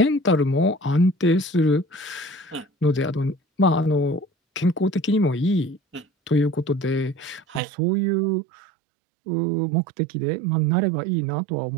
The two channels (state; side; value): drops out; left; at 7.6 s